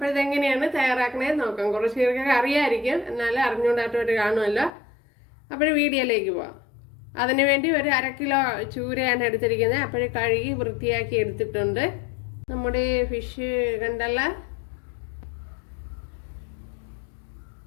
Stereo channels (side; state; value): right; drops out; at 4.7 s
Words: ഇതെങ്ങനെയാണ് തയ്യാറാക്കണേന്ന് നോക്കാം. കുറച്ച് പേർക്കൊക്കെ അറിയാമായിരിക്കും, എന്നാലും അറിഞ്ഞുകൊണ്ടായിട്ട് കാണുമല്ലോ. അപ്പോൾ വീഡിയോയിലേക്ക് പോവാം. അതിനുവേണ്ടി ഒരു 1/2 കിലോ ചൂരയാണ് എടുത്തിരിക്കുന്നത്. അപ്പോൾ കഴുകി വൃത്തിയാക്കി എടുത്തിട്ടുണ്ട്. നമ്മുടെ ഫിഷ് കണ്ടല്ല,